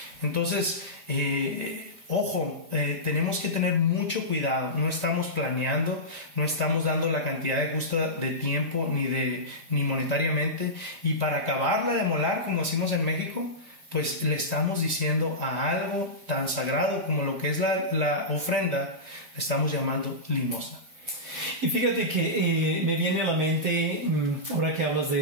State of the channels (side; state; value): left; late; 5.0 ms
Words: Entonces Ojo, tenemos que tener mucho cuidado. No estamos planeando, no estamos dando la cantidad de justa de tiempo ni monetariamente. Y para acabarla de molar, como decimos en México, pues le estamos diciendo a algo tan sagrado como lo que es la ofrenda, le estamos llamando limosna. Y fíjate que me viene a la mente, ahora que hablas